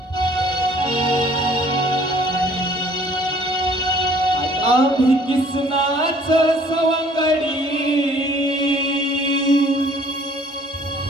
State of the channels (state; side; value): normal; both; correlation 0.56